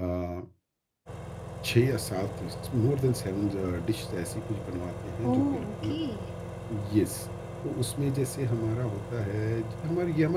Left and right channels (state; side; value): identical; both; correlation 1.00